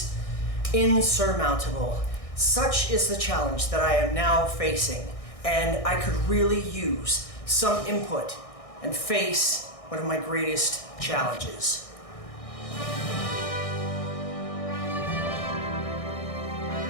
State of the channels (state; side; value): late; right; 1.6 ms